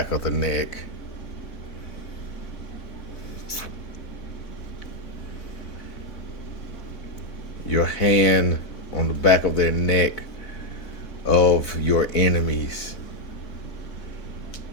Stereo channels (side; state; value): right; late; 4.0 ms